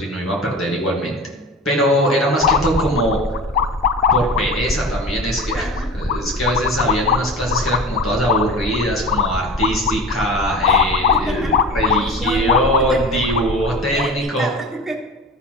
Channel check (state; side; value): normal; both; correlation 0.34